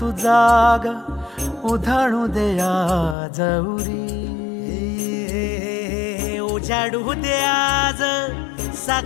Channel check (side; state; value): right; drops out; at 3.2 s